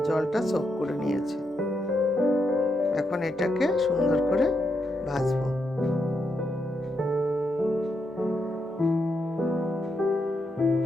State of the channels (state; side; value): normal; both; correlation 0.82